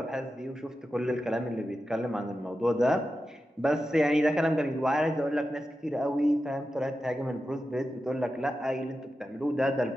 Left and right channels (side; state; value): both; normal; correlation 0.91